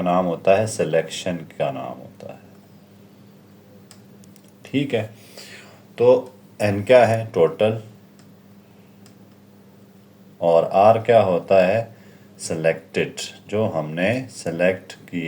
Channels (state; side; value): identical; both; correlation 1.00